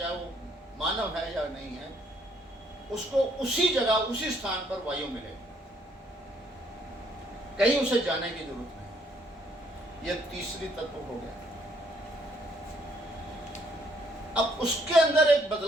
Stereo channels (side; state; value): both; normal; correlation 0.68